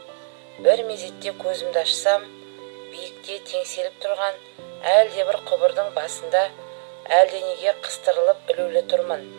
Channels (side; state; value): left; silent; 55 dB below the other